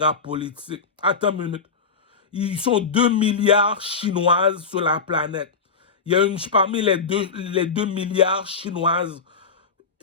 politique. Attends une minute. Ils sont 2 milliards chinoises sur la planète. Il y a une, parmi les 2 milliards chinoises,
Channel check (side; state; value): right; quieter; 5.1 dB